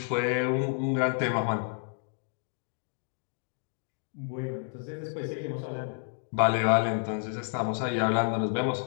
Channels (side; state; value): right; silent; digital silence